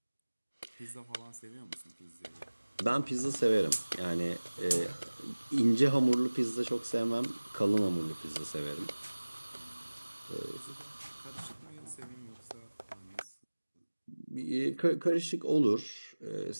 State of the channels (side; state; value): both; inverted; correlation -1.00